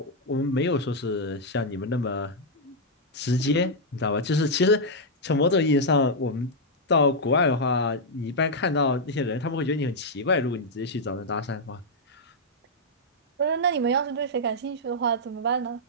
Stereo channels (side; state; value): both; normal; correlation -0.04